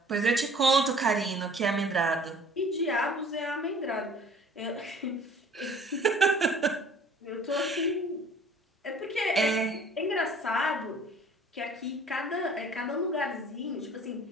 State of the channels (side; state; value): both; normal; correlation 0.51